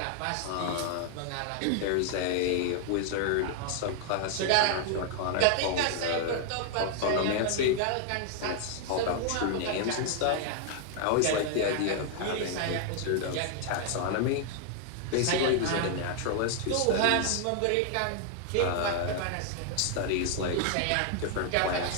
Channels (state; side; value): different; both; correlation 0.00